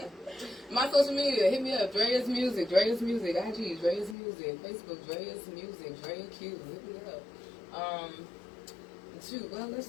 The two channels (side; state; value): right; drops out; at 4.2 s